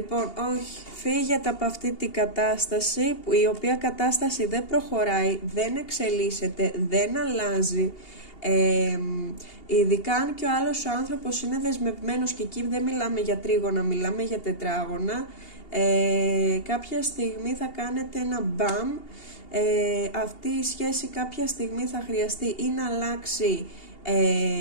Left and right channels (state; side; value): late; right; 2.8 ms